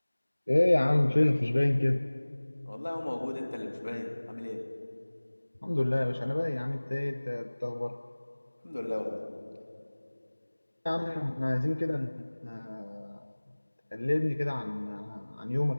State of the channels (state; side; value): inverted; both; correlation -1.00